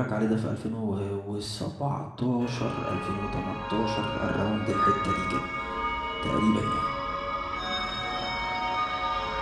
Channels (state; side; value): identical; both; correlation 1.00